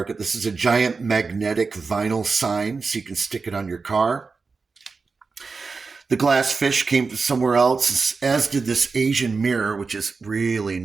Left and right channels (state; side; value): quieter; left; 4.5 dB